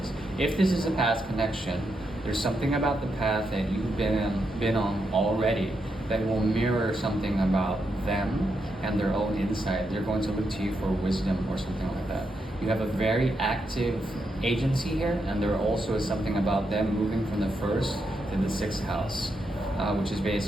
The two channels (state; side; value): normal; both; correlation 0.83